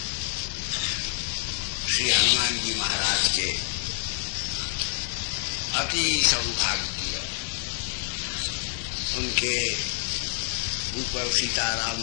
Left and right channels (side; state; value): right; silent; digital silence